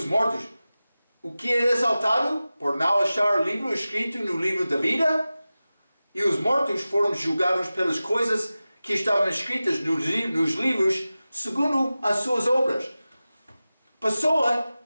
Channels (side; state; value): both; inverted; correlation -0.96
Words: mortos, o que é exaltado por não achar livro escrito no livro da vida? E os mortos foram julgados pelas coisas que estavam escritas nos livros segundo as suas obras. Pessoa